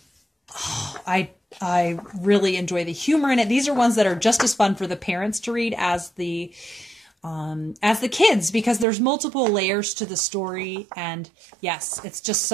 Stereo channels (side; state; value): left; drops out; at 8.8 s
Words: I really enjoy the humor in it. These are ones that are just as fun for the parents to read as the kids, because there's multiple layers to the story. And yes, it's just